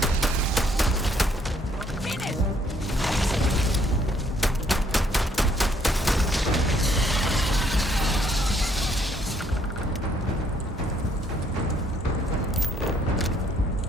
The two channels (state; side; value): normal; both; correlation 0.67